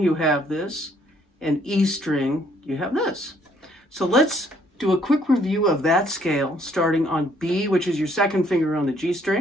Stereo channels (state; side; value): normal; both; correlation 0.65